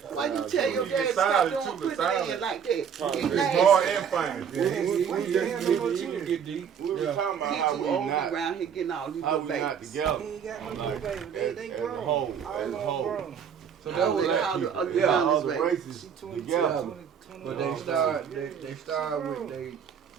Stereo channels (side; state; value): left; quieter; 7.6 dB